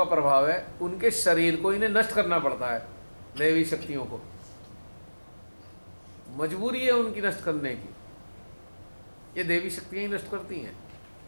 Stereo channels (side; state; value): both; inverted; correlation -1.00